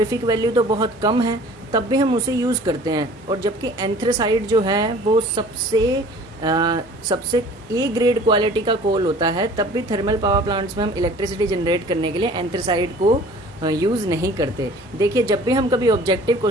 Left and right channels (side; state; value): both; normal; correlation 0.48